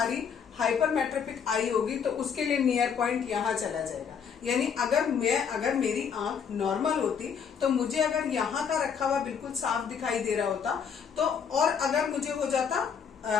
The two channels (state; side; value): quieter; right; 6.9 dB